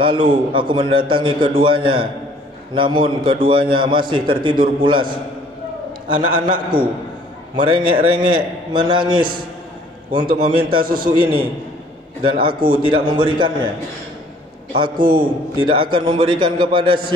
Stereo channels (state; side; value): normal; both; correlation 0.57